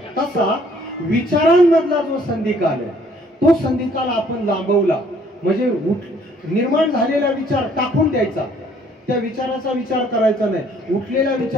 तसा विचारांमधला जो संधिकाल आहे तो संधिकाल आपण लांबवला म्हणजे निर्माण झालेला विचार टाकून द्यायचा, त्या विचाराचा विचार करायचा नाही, उठलेला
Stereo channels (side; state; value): both; normal; correlation 0.61